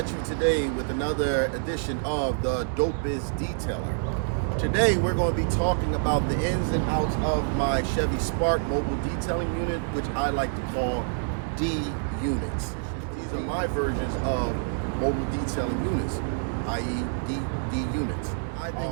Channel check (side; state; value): left; silent; 60 dB below the other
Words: you today with another edition of the Dopest Detailer. Today, we're going to be talking about the ins and outs of my Chevy Spark Mobile Detailing unit, which I like to call D units. These are my versions of mobile detailing units, i.e. D units. I've